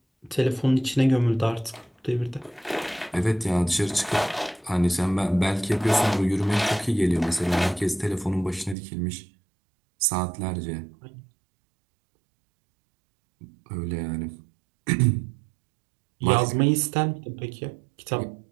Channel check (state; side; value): drops out; left; at 8.8 s